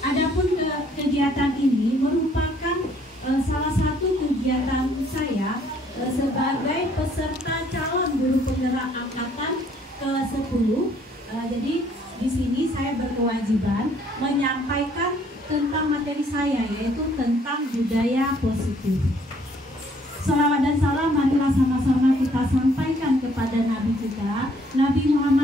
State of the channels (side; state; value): both; normal; correlation 0.63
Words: Adapun kegiatan ini merupakan salah satu kegiatan saya sebagai peserta calon guru penggerak angkatan ke-10. Jadi di sini saya berkewajiban menyampaikan tentang materi saya, yaitu tentang budaya positif. Salawat dan salam marilah sama-sama kita sampaikan kepada Nabi kita, Nabi